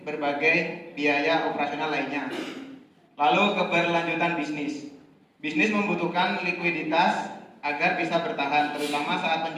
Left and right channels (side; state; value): both; identical; correlation 1.00